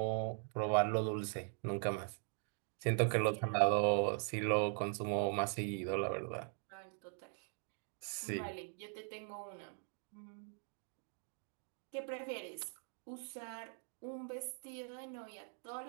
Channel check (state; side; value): silent; left; 50 dB below the other